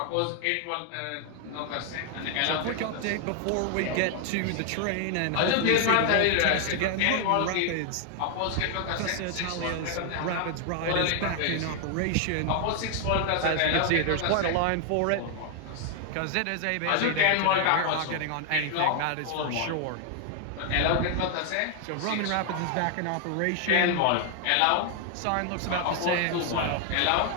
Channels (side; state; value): both; different; correlation 0.00